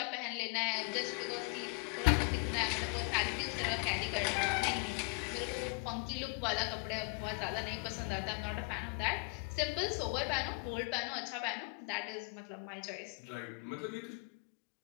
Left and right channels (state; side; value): quieter; right; 33.0 dB